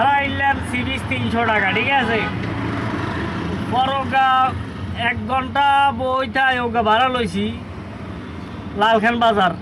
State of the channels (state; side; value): identical; both; correlation 1.00